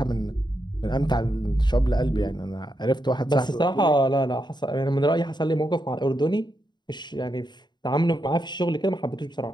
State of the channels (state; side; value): late; right; 0.21 ms